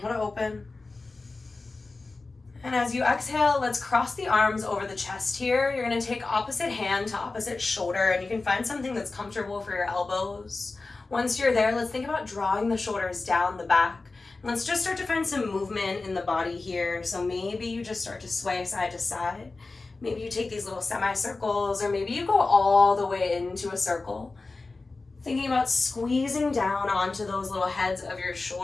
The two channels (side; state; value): right; quieter; 3.6 dB